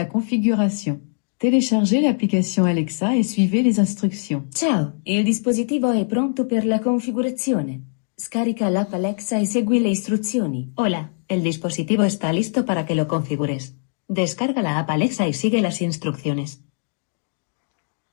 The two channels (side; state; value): right; silent; digital silence